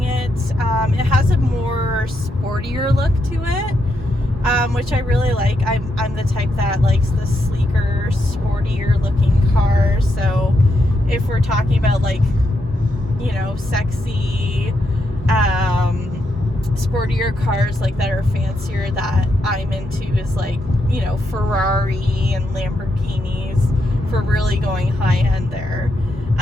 it. It has a more sportier look to it, which I really like. I'm the type that likes the sleeker, sportier looking cars. So if we're talking about, like, you know, sexy, sportier cars like that are fancier, that I'm into is like, you know, Ferrari and Lamborghinis, for really going high end there.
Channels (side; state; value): both; normal; correlation 0.81